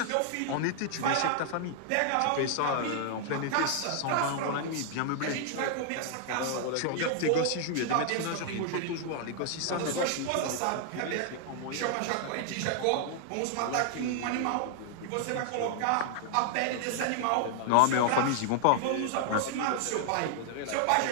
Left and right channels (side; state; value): both; different; correlation 0.00